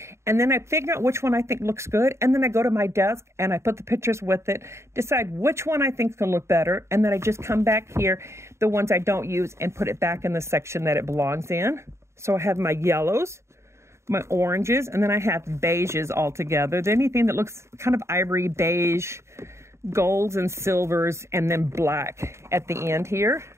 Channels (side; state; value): left; late; 0.13 ms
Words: and then I figure out which one I think looks good, and then I go to my desk and I put the pictures with it, decide which one I think is going to look better, and then I just come back here, the ones I don't use, and put it back in the section that it belongs in. So I have my yellows, my oranges, and then I have beiges all together. Anything that looks kind of ivory, beige, golds and silvers, and then black at the end here.